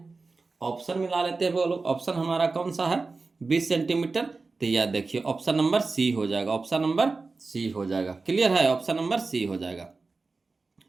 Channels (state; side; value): quieter; left; 3.9 dB